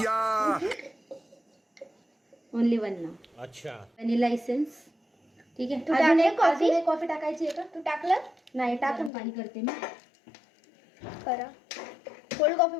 ओनली 1 ना. अच्छा व्हॅनिला एसेन्स. ठीक आहे. तू अजून टाकलं एक coffee? अजून एक कॉफी टाकायची आहे का? तू टाकलं? नाही, टाकून पाणी करते मी. करा. कोल्ड कॉफी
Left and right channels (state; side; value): drops out; right; at 9.1 s